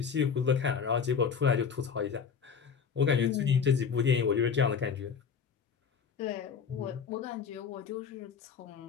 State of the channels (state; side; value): quieter; right; 6.6 dB